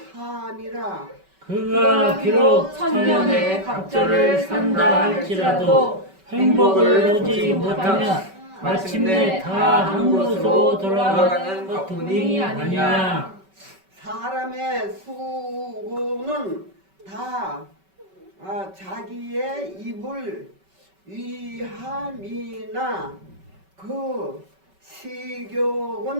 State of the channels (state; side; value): late; left; 5.2 ms